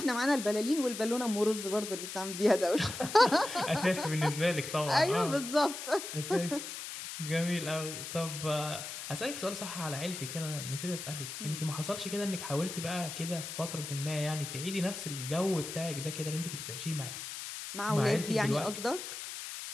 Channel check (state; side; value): noise; left; hiss, 8 dB below the sound